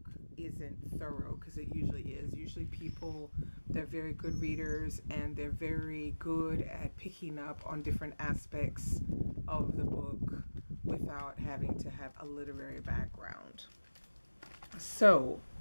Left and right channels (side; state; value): both; inverted; correlation -1.00